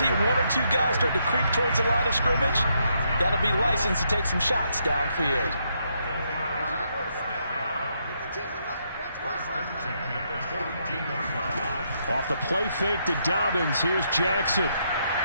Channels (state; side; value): inverted; both; correlation -0.77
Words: 1 or 2 guys start to creep towards the line of scrimmage, that'll be license to take some shots downfield. Off the play fake to Dobbins, here's Jackson.